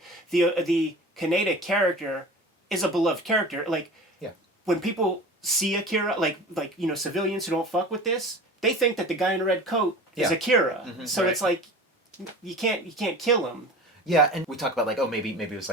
The Kaneda character is a beloved character. Like, when people see Akira, like you know, civilians who don't fuck with this, they think that the guy in a red coat is Akira. Mm-hmm, so it's like you can't kill him. Yeah, and we talk about like, oh, maybe it was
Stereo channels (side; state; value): both; normal; correlation 0.37